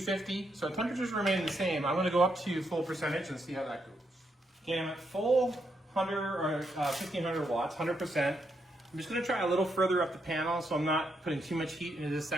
So temperatures remain the same. I'm going to go up to full percentage and see how that goes. Okay, I'm at full 100 or 1500 watts, 100%. I'm just going to try a little further up the panel so I'm not putting too much heat into this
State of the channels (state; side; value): normal; both; correlation 0.79